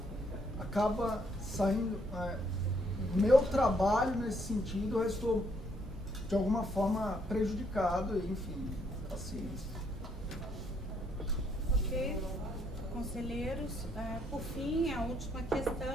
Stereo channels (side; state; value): both; normal; correlation 0.71